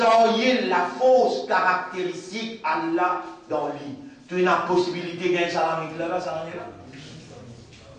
la fausse caractéristique Allah dans lui. Tu as une possibilité de gagner ça là, ça là.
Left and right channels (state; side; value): identical; both; correlation 1.00